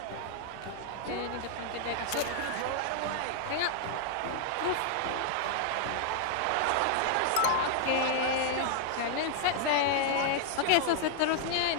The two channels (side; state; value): both; different; correlation -0.01